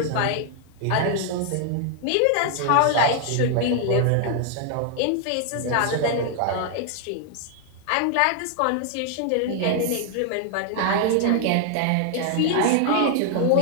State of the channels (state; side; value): different; both; correlation 0.00